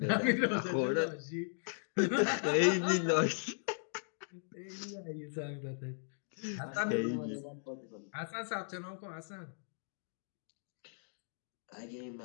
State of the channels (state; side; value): silent; right; digital silence